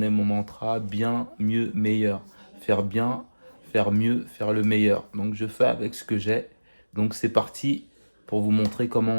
mon mantra, bien, mieux, meilleur. Faire bien, faire mieux, faire le meilleur. Donc je fais avec ce que j'ai. Donc c'est parti pour vous montrer comment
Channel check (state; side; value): inverted; both; correlation -1.00